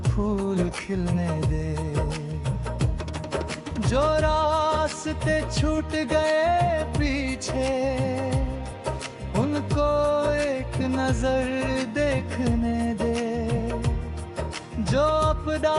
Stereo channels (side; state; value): both; identical; correlation 1.00